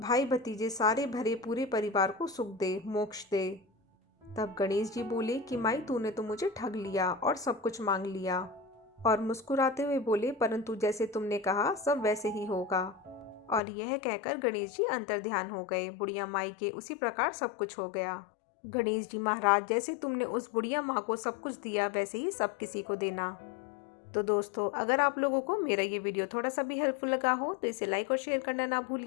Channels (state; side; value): drops out; right; at 13.6 s